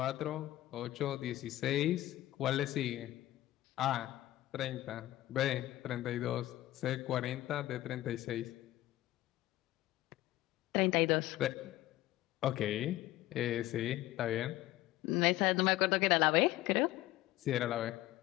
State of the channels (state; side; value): quieter; right; 15.8 dB